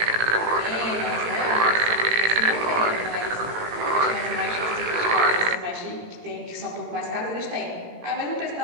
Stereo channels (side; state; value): left; late; 18 ms